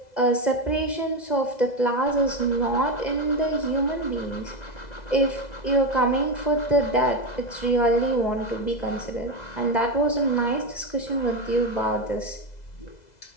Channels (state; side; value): late; right; 2.0 ms